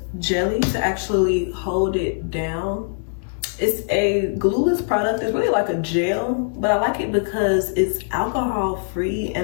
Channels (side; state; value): right; silent; digital silence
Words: jelly to actually hold it down. It's a glueless product. It's really like a gel, but I like it because it's alcohol free